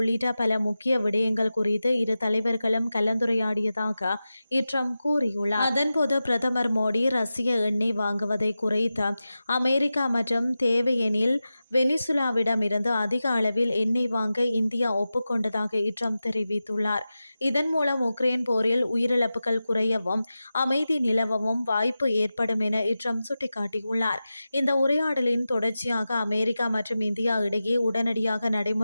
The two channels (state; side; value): inverted; both; correlation -0.94